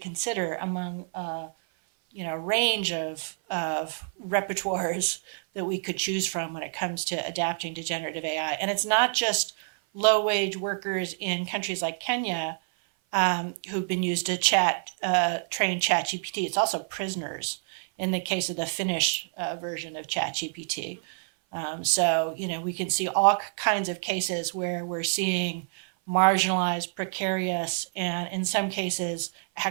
among a range of repertoires that we could choose from when it comes to adapting to generative AI. And it's not just low-wage workers in countries like Kenya who've been used to train ChatGPT. It's also prisoners in the case of the Finnish version of ChatGPT. So we can see all kinds of cases where we're seeing marginalized, precarious, and in some cases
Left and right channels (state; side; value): silent; left; 56 dB below the other